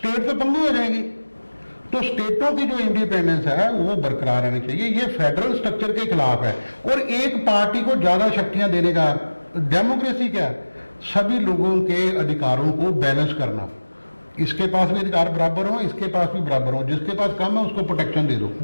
तो पंगु हो जाएगी। तो स्टेटों की जो इंडिपेंडेंस है वो बरकरार रहनी चाहिए। ये फेडरल स्ट्रक्चर के खिलाफ है। और एक पार्टी को ज्यादा शक्तियां देने का, डेमोक्रेसी क्या है? सभी लोगों के अधिकारों को बैलेंस करना, इसके पास भी अधिकार बराबर हो, इसके पास भी बराबर हो, जिसके पास कम है उसको प्रोटेक्शन दे दो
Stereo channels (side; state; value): both; inverted; correlation -1.00